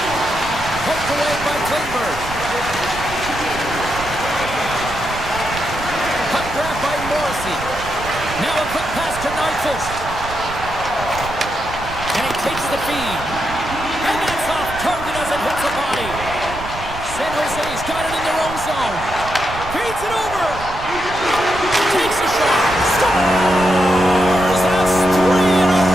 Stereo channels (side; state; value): right; noise; rumble, 11 dB below the sound